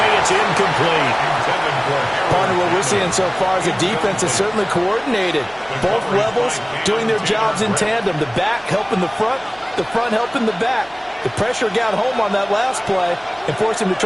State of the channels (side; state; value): right; noise; hum, 29 dB below the sound